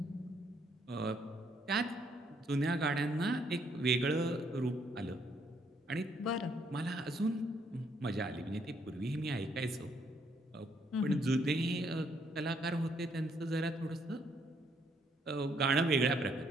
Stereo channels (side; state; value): both; normal; correlation 0.70